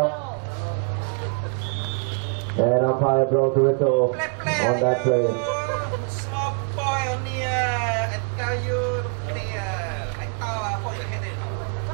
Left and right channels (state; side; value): quieter; left; 39.1 dB